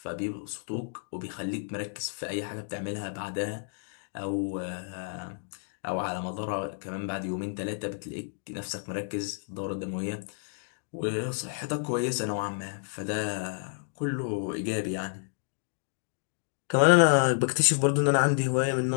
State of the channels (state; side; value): silent; right; digital silence